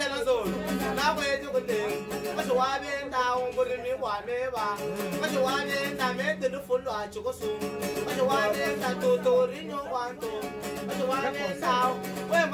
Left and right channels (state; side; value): identical; both; correlation 1.00